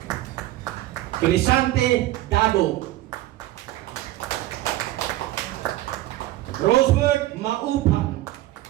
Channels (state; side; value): quieter; left; 15.7 dB